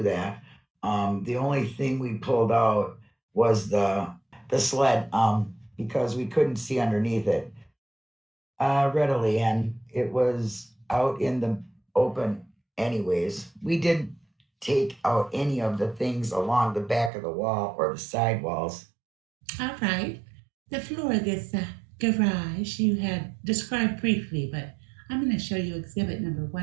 that. The only thing we pulled out was the sled because we couldn't see underneath it readily, and it was out in the open anyways. We didn't take out any of the things along the back of the wall or the side walls. All right. The floor of this garage you had described briefly, but I'm going to show you exhibit number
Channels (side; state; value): left; drops out; at 17.1 s